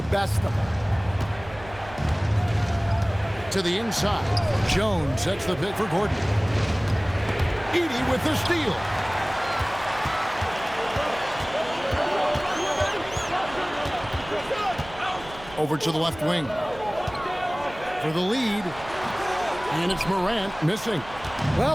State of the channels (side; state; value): right; noise; hum, 18 dB below the sound